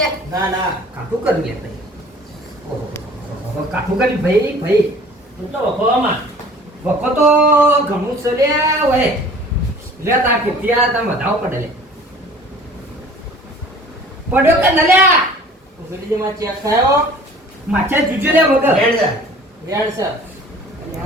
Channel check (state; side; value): normal; both; correlation 0.48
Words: ના ના કાઠું કર્યું લે ભાઈ ઓહો કાઠું કર્યું ભાઈ તું તો વખોવામાં વખો તો ઘણું છે લે ઓય લે તા ત્યાં તમે વધાવો પડે લે પડ્યો કે ન લે ઉગડી જે માં ચેક થયો માછા જુજો લે વગર રેડ જા. રેડ છે